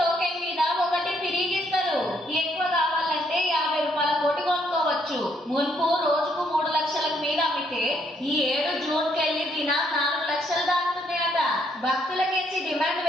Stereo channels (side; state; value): both; normal; correlation 0.71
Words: మీద ఒకటి తిరిగిస్తారు. ఎక్కువ కావాలంటే 50 రూపాయల కోటి కొనుక్కోవచ్చు. మున్పు రోజుకు 3 లక్షలకు మీద అమ్మితే ఈ 7 జూన్కెళ్ళి దిన 4 లక్షలు దాటుతున్నాయట. భక్తులకించి డిమాండ్